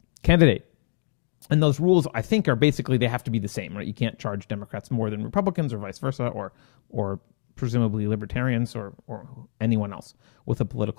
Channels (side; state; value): right; silent; digital silence